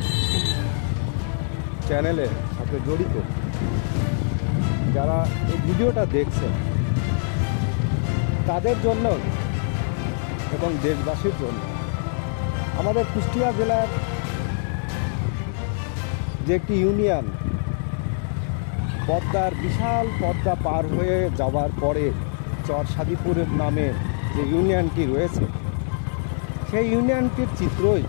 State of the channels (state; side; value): silent; right; 63 dB below the other